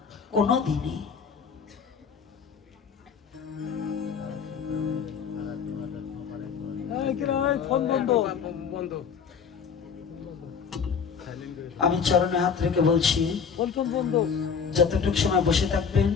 কোনো দিনে। আমি চরণে হাত রেখে বলছি, যতটুকু সময় বসে থাকবেন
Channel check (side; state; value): right; quieter; 6.4 dB